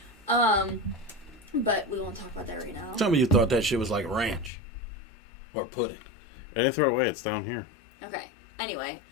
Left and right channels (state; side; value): drops out; right; at 4.5 s